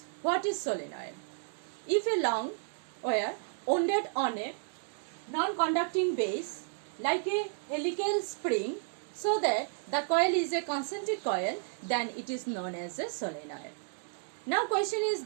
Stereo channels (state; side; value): silent; left; digital silence